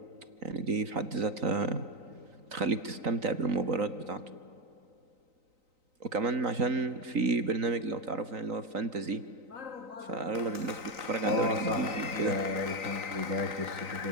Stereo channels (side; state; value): left; late; 3.9 ms